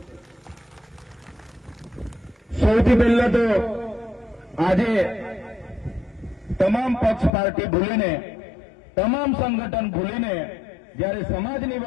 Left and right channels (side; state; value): right; drops out; at 7.3 s